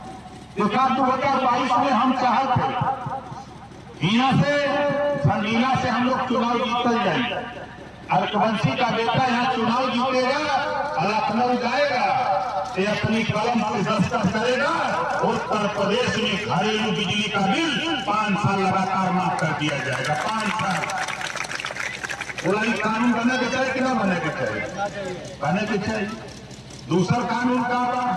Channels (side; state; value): both; identical; correlation 1.00